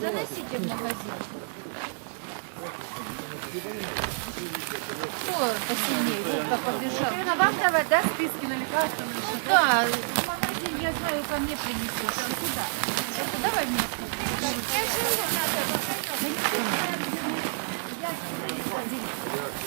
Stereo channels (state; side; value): silent; left; digital silence